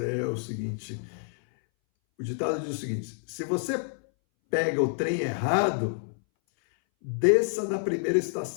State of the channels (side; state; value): right; silent; 59 dB below the other